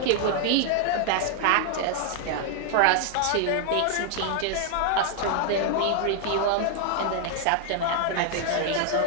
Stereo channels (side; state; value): both; different; correlation -0.01